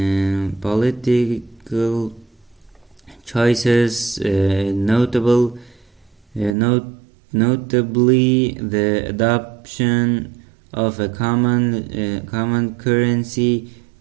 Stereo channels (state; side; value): drops out; left; at 6.6 s